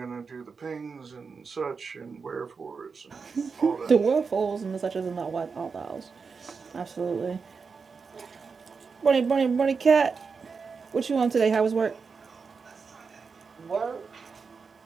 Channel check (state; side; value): quieter; left; 5.2 dB